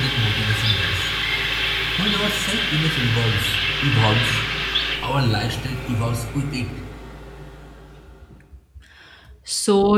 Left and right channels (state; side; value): identical; both; correlation 1.00